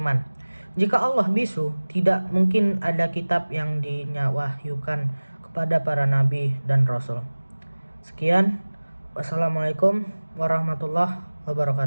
Jika Allah bisu, tidak mungkin ada kitab yang dinyawahyukan kepada para nabi dan rasul. Sekian, wassalamualaikum warahmatullahi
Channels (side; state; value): both; inverted; correlation -1.00